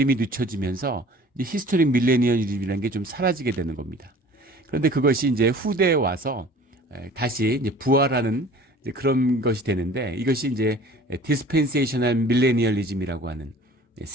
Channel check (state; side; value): normal; both; correlation 0.47